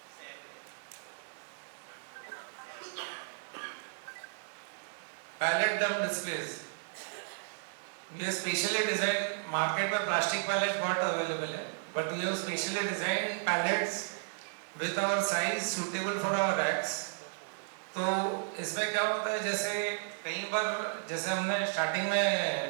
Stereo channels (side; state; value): left; silent; digital silence